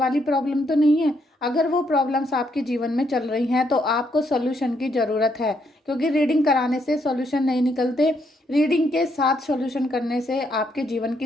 प्रॉब्लम तो नहीं है। अगर वो प्रॉब्लम्स आपके जीवन में चल रही हैं तो आपको सॉल्यूशन की ज़रूरत है, क्योंकि रीडिंग कराने से सॉल्यूशन नहीं निकलते। रीडिंग के साथ सॉल्यूशन करने से आपके जीवन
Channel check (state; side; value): normal; both; correlation 0.74